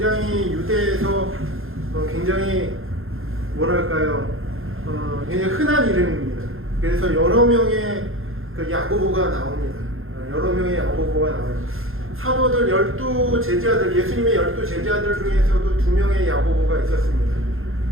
유대에서 굉장히 뭐랄까요, 굉장히 흔한 이름입니다. 그래서 여러 명의 그 야고보가 나옵니다. 여러 명의 야고보가 나와요. 사도들 12제자들, 예수님의 12제자들 중에서도 2명의 야고보가 있었습니다.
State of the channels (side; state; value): left; late; 0.61 ms